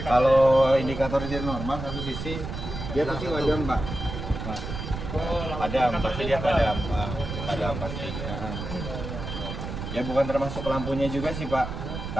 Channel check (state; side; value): noise; right; rumble, 7 dB below the sound